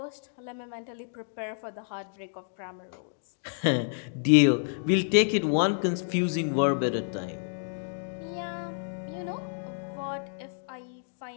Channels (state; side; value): silent; right; digital silence